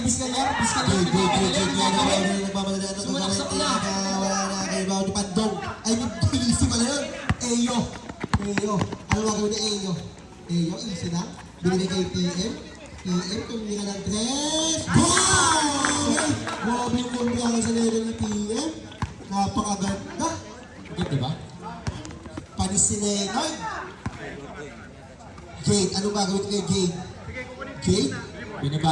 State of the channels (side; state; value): both; identical; correlation 1.00